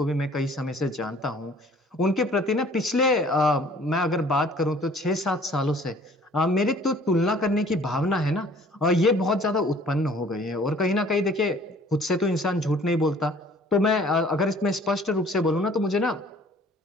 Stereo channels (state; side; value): normal; both; correlation 0.54